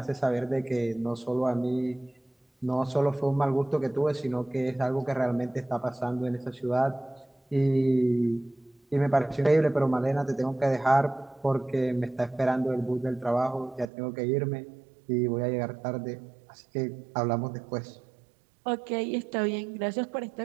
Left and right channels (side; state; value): left; drops out; at 13.9 s